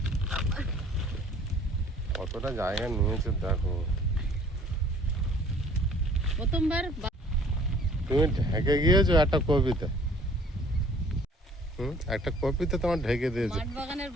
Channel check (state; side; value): normal; both; correlation 0.54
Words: কতটা জায়গা নিয়েছে দেখো। প্রথমবার তুমি ঢেকে গিয়েছো একটা কপিতে। একটা কপিতে তোমার ঢেকে দিয়েছে। মাঠ বাগানের